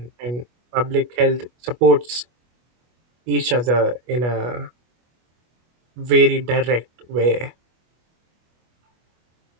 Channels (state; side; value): late; left; 25 ms